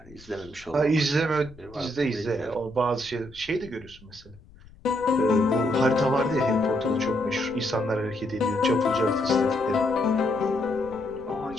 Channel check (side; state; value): left; noise; rumble, 23 dB below the sound